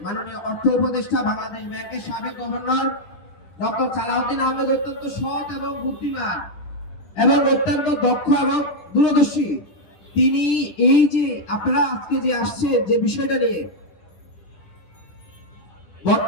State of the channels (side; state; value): right; late; 10 ms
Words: মাননীয় অর্থ উপদেষ্টা, বাংলাদেশ ব্যাংকের সাবেক গভর্নর ডক্টর সালাউদ্দিন আহমেদ অত্যন্ত সৎ এবং বুদ্ধিমান এবং অত্যন্ত দক্ষ এবং দূরদর্শী। তিনি এই যে আপনারা আজকে যে আসছে যে বিষয়টা নিয়ে,